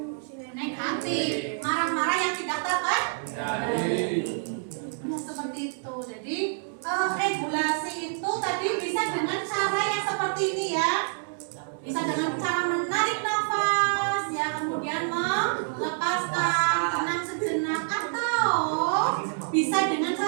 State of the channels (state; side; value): silent; left; digital silence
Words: negatif, marah-marah yang tidak terkendali. Nah, seperti itu. Jadi regulasi itu tadi bisa dengan cara yang seperti ini ya. Bisa dengan cara menarik nafas ya, kemudian melepaskan, tenang sejenak, atau bisa dengan